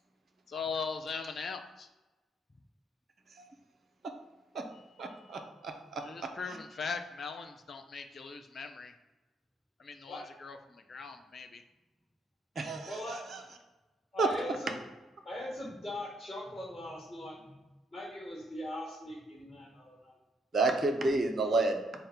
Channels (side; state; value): both; normal; correlation 0.70